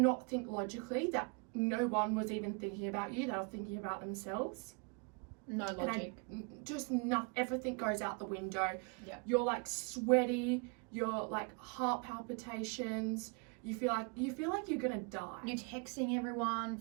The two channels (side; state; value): left; quieter; 34.8 dB